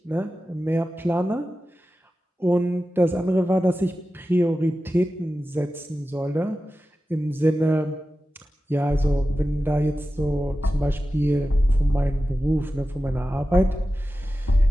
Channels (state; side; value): normal; both; correlation 0.94